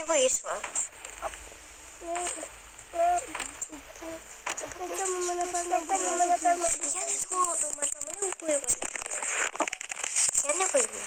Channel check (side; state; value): both; identical; correlation 1.00